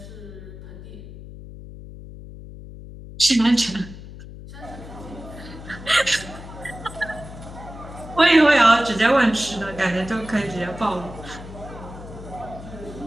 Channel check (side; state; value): left; noise; hum, 14 dB below the sound